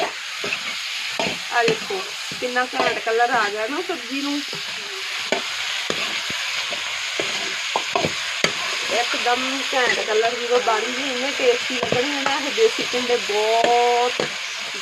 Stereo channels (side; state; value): both; identical; correlation 1.00